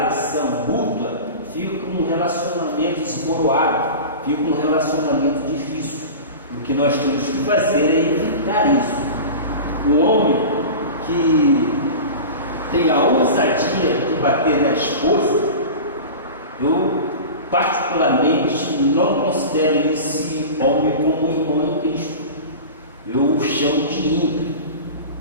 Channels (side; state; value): both; inverted; correlation -0.32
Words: agressão mútua, fica um relacionamento esboroado, fica um relacionamento difícil. O que nós temos que fazer é evitar isso. O homem que tem a ousadia de bater na esposa, eu particularmente não considero esse homem como irmão em Cristo. Eu o chamo de ímpio.